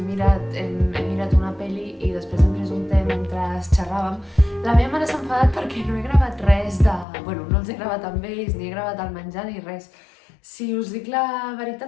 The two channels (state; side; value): drops out; right; at 7.1 s